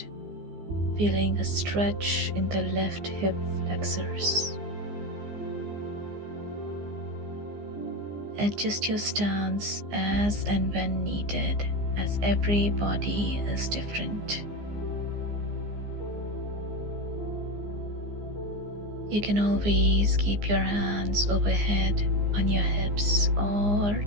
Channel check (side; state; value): left; late; 15 ms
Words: feeling a stretch in the left hip flexors. Adjust your stance as and when needed, as every body is different. You can always keep your hands overhead on your hips or